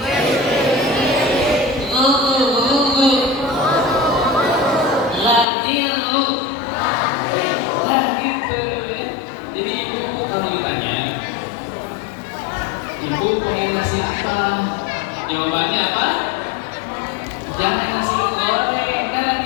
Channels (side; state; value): right; drops out; at 5.5 s